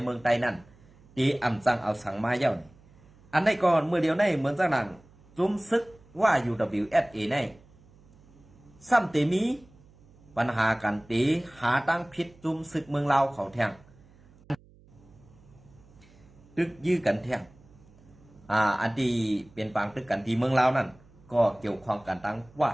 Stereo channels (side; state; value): right; noise; hum, 26 dB below the sound